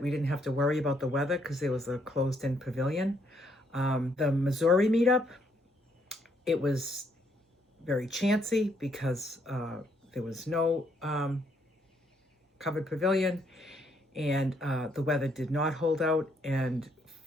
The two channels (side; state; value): both; normal; correlation 0.71